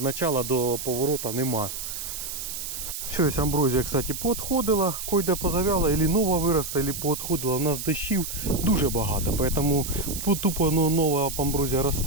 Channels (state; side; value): noise; right; hiss, 6 dB below the sound